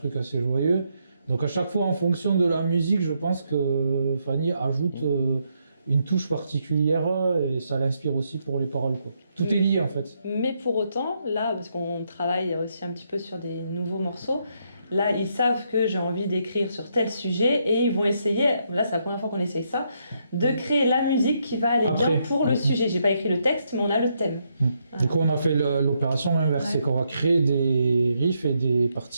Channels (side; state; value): both; inverted; correlation -0.77